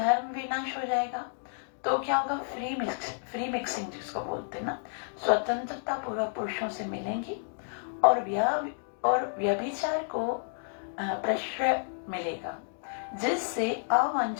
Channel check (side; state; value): right; silent; digital silence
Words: विनाश हो जाएगा तो क्या होगा, फ्री मिक्सिंग जिसको बोलते हैं ना, स्वतंत्रता पूर्वक पुरुषों से मिलेंगी और व्यभिचार को प्रश्रय मिलेगा, जिससे